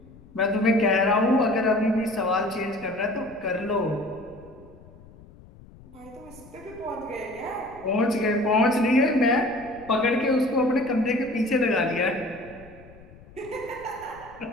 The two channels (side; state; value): left; noise; rumble, 22 dB below the sound